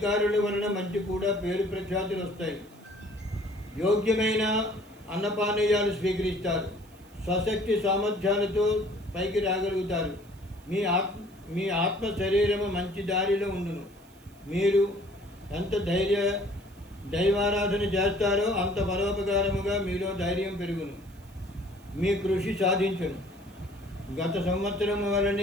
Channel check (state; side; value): noise; right; hiss, 28 dB below the sound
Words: వలన మంచి కూడా పేరు ప్రఖ్యాతులు వస్తాయి. యోగ్యమైన అన్నపానీయాలు స్వీకరిస్తారు. స్వశక్తి సామర్థ్యాలతో పైకి రాగలుగుతారు. మీ ఆత్మ శరీరము మంచి దారిలో ఉండును. మీరు ఎంత దైవారాధన చేస్తారో అంత పరోపకారముగా మీలో ధైర్యం పెరుగును. మీ కృషి సాధించును. గత సంవత్సరము